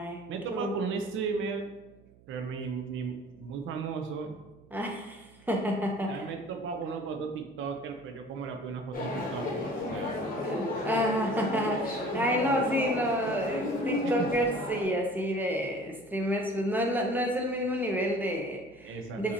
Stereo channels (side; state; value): right; noise; hum, 26 dB below the sound